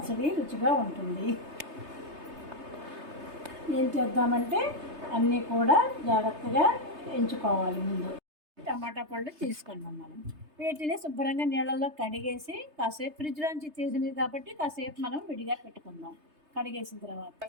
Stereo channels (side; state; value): left; late; 3.3 ms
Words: రుచిగా ఉంటుంది. ఏం చేద్దామంటే అన్నీ కూడా జాగ్రత్తగా ఎంచుకోవాలి. ముందు టమాటా పళ్ళు తీసుకున్నాం. మనం వీటిని శుభ్రంగా నీళ్ళల్లో కడిగేసి కాసేపు ఫ్రిడ్జ్లోంచి తీసినవి కాబట్టి కాసేపు మనం విడిగా పెట్టుకుందాం. కడిగేసిన తర్వాత